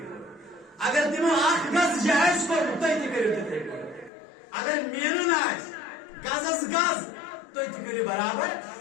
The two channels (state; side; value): drops out; right; at 4.1 s